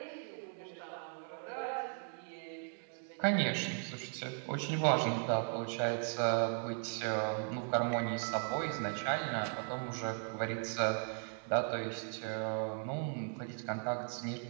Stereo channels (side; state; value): left; silent; 53 dB below the other